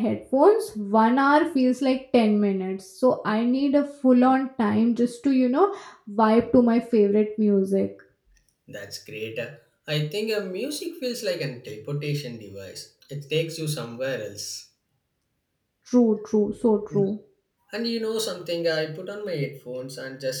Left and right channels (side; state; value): both; identical; correlation 1.00